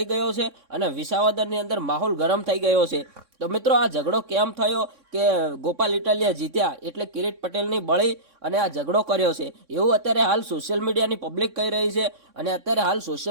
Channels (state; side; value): late; left; 3.6 ms